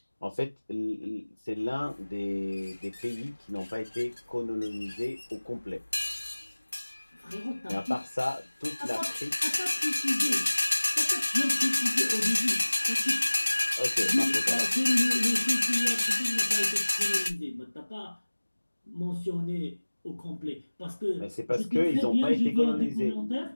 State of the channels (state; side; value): inverted; both; correlation -1.00